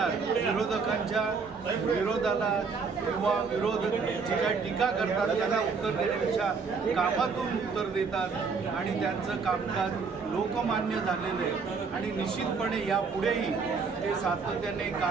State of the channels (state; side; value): quieter; left; 5.1 dB